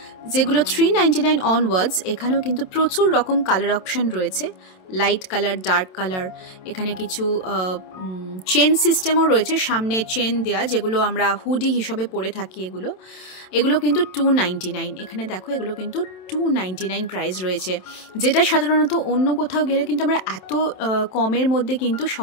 যেগুলো 399 অনওয়ার্ডস। এখানেও কিন্তু প্রচুর রকম কালার অপশন রয়েছে, লাইট কালার, ডার্ক কালার। এখানে কিছু চেন সিস্টেমও রয়েছে, সামনে চেন দেয়া, যেগুলো আমরা হুডি হিসাবে পরে থাকি। এগুলো কিন্তু 299। এখানে দেখো এগুলো কিন্তু 299 প্রাইস রয়েছে, যেটা সাধারণত অন্য কোথাও গেলে কিন্তু আমরা এত কমের মধ্যে কিন্তু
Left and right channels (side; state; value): right; late; 27 ms